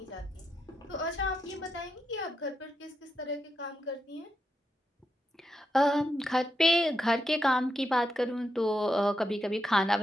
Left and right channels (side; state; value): both; normal; correlation 0.84